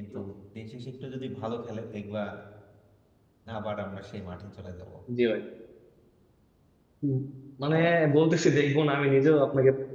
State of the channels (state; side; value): identical; both; correlation 1.00